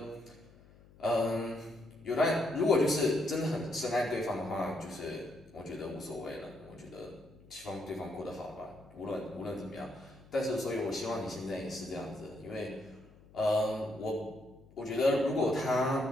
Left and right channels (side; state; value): left; noise; hum, 24 dB below the sound